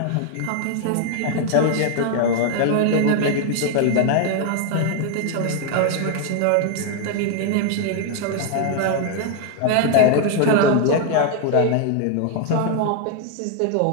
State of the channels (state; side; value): different; both; correlation 0.00